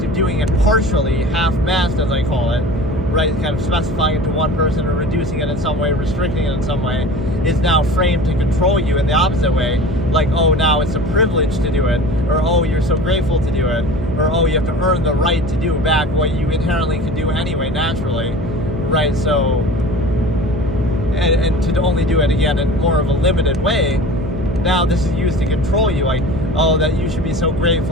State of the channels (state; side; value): noise; right; hum, 6 dB below the sound